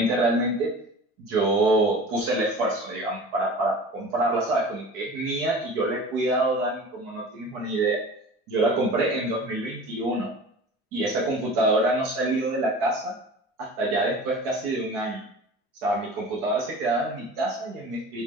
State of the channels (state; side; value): normal; both; correlation 0.38